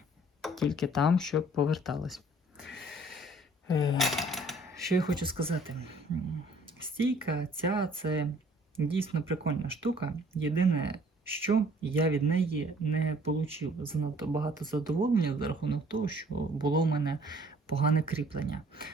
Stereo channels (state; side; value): normal; both; correlation 0.57